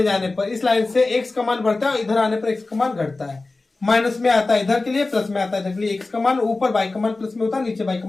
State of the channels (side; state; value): right; quieter; 3.4 dB